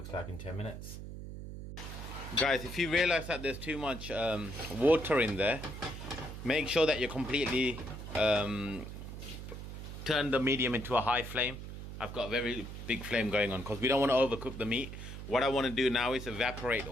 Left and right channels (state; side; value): noise; right; hum, 9 dB below the sound